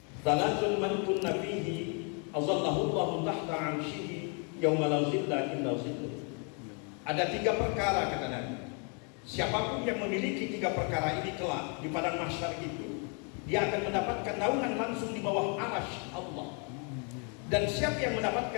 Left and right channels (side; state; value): right; quieter; 37.9 dB